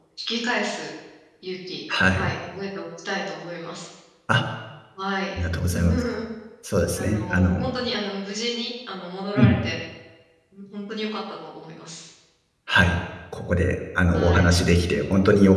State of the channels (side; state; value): both; identical; correlation 1.00